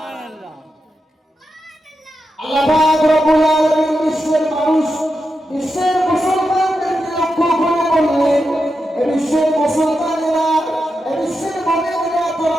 আল্লাহ পাক রব্বুল আলামিন বিশ্বের মানুষ, বিশ্বের মুসলমানদেরকে লক্ষ্য করে বললেন, বিশ্বের মুসলমানেরা, বিশ্বের মুমিনেরা,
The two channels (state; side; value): normal; both; correlation 0.88